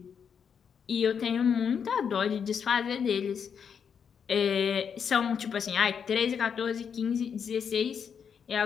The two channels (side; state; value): right; quieter; 7.1 dB